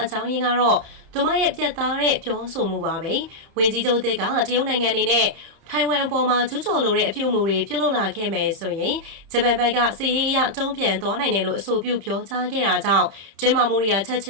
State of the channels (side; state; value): left; late; 30 ms